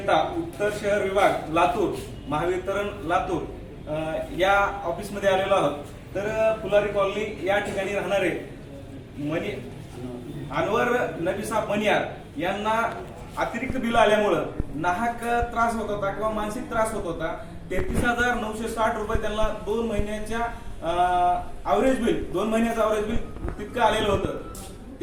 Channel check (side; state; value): both; identical; correlation 1.00